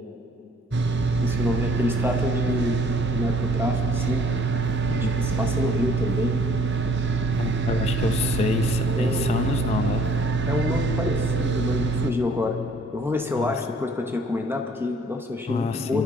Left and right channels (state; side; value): normal; both; correlation 0.59